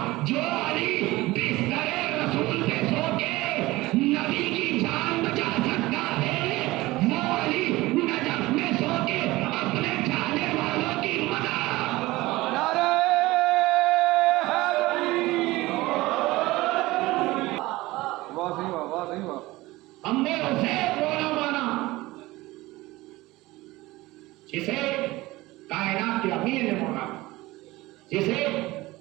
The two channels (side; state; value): left; quieter; 19.4 dB